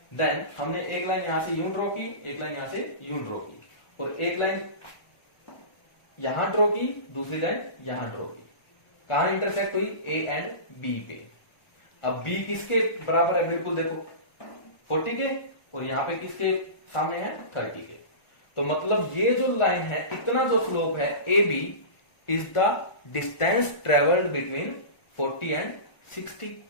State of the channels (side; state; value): right; late; 1.5 ms